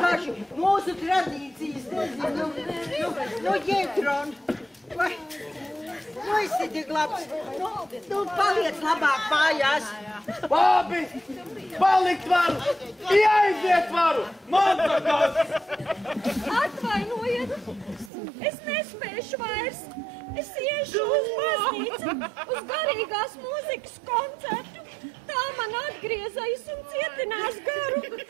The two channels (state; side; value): drops out; left; at 18.1 s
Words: mūsu tradīcijas nezinu. Jēdron, vai... Nu, esi tik labs. Nu, paliec labāk mājās. Labi, palikt varu, aiziet varu, man takās. Atvainojiet, es nespēšu vairs. Es iešu uz baznīcu, uz garīgās mūzikas koncertu. Tā man atgriezais un cietinās garu.